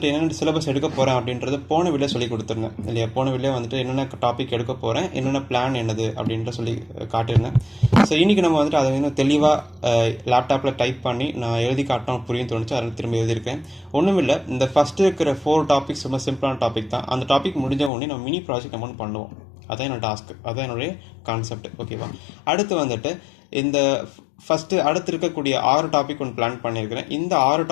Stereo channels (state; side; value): drops out; right; at 17.9 s